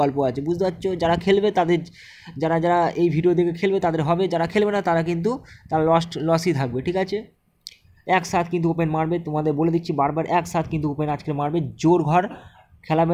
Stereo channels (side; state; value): both; identical; correlation 1.00